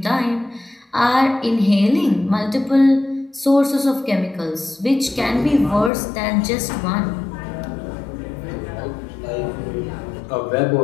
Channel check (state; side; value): drops out; right; at 5.9 s